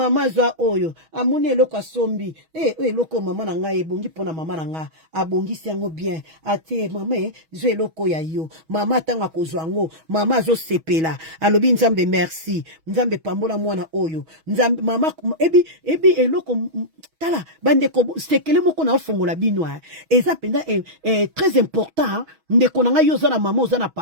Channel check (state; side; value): late; left; 6.2 ms